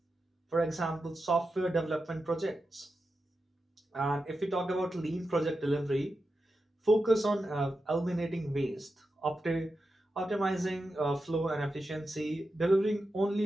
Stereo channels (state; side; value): normal; both; correlation 0.89